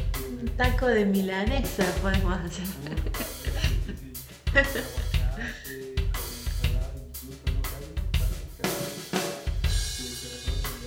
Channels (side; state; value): both; identical; correlation 1.00